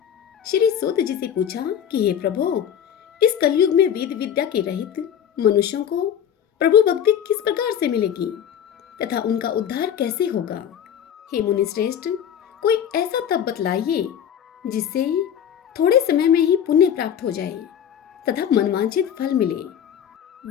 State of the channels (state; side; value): quieter; right; 9.1 dB